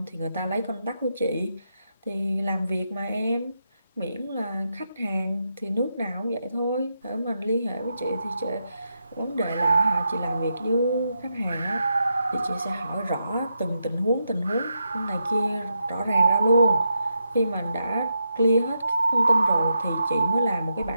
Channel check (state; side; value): inverted; both; correlation -0.84